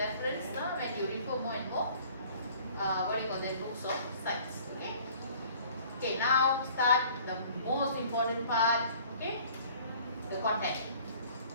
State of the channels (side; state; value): both; inverted; correlation -0.52